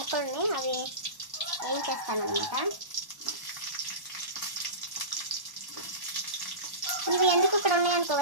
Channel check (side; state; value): left; late; 1.1 ms